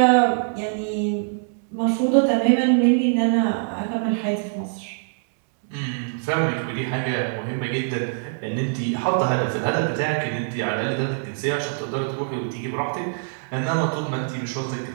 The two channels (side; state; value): left; silent; digital silence